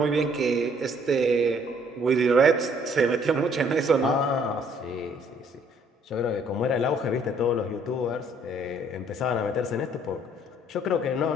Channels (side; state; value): both; normal; correlation 0.62